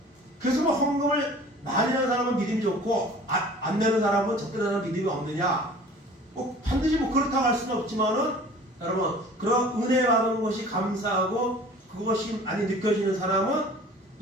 그래서 헌금을 많이 하는 사람은 믿음이 좋고 안 내는 사람은 적대하는 믿음이 없느냐? 반드시 그렇다고 할 수는 없지만은 여러분 그런 은혜 받은 것이 감사하고 그것이 많이 느껴지는 사람은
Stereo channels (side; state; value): both; normal; correlation 0.46